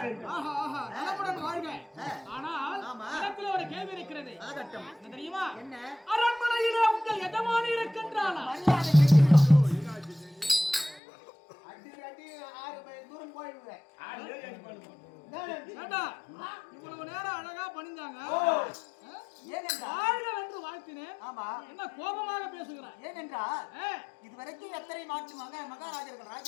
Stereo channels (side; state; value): right; drops out; at 11.0 s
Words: ஆனால் ஒரு கேள்வி இருக்கிறது. தெரியுமா? அரண்மனையிலே உங்கள் எஜமானி இருக்கின்றாளா? இவ்வளவு நேரம் அழகா பணிஞ்சாங்க, வாழ்த்தினேன். என்ன கோபமாக பேசுகிறார்? ஏனென்றால் இதுவரைக்கும் எத்தனை மாற்று மகாராஜர்கள்